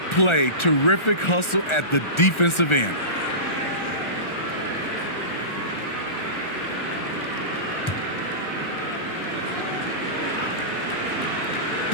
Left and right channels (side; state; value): right; late; 1.4 ms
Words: play. Terrific hustle at the defensive end.